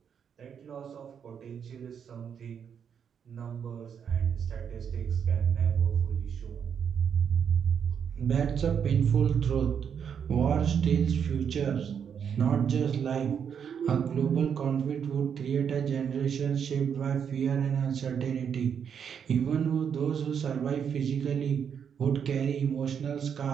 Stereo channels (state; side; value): quieter; left; 7.6 dB